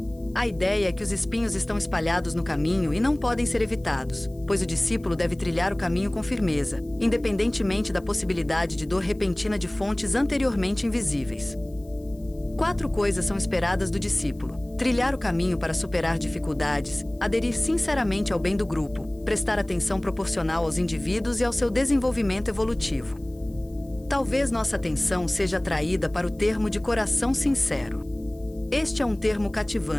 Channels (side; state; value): left; noise; hiss, 29 dB below the sound